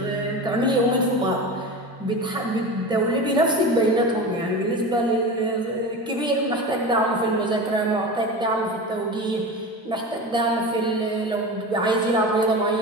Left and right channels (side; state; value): both; normal; correlation 0.29